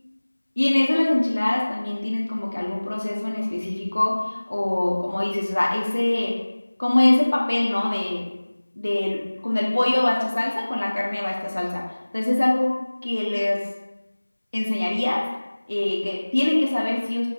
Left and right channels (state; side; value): inverted; both; correlation -1.00